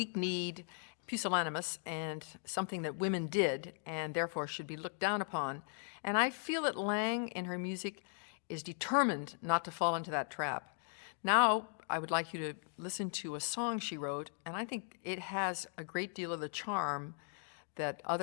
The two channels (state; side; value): silent; right; 52 dB below the other